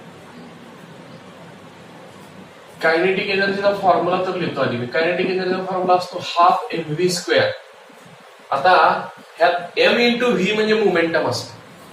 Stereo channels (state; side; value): identical; both; correlation 1.00